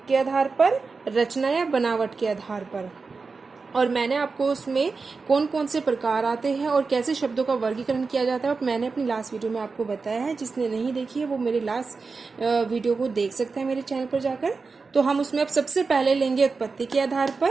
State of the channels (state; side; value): quieter; left; 4.4 dB